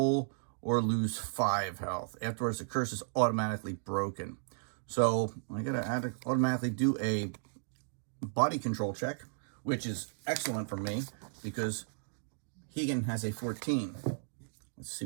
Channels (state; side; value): silent; left; digital silence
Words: or lose 5 health. Afterwards, the curse is automatically broken. So I gotta automatically do a body control check, which is excellent for me because Heigan has a 14. Let's see